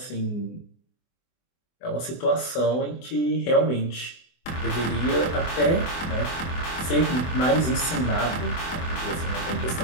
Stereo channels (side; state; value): right; late; 24 ms